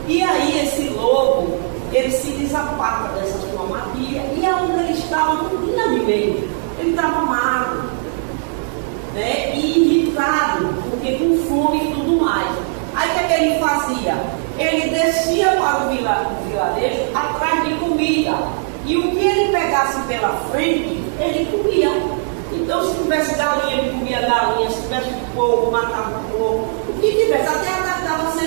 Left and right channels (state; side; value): silent; left; digital silence